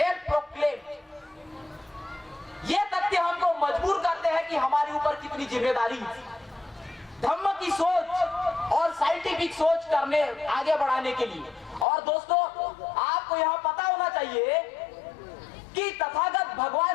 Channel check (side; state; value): right; drops out; at 11.9 s